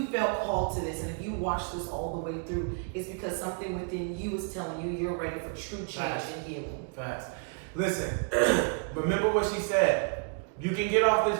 felt called to this, and if you watched this all the way through, it's because something within you is telling you you're ready for true change and healing. Facts. Listen, remember what she said. You can get off this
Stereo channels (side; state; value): left; quieter; 39.5 dB